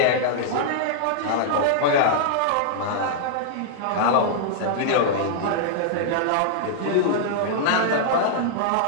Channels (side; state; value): both; different; correlation -0.01